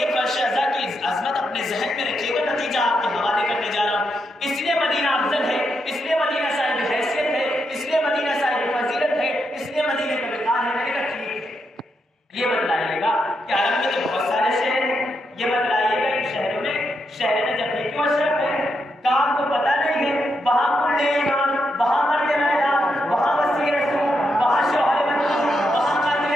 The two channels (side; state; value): both; normal; correlation 0.82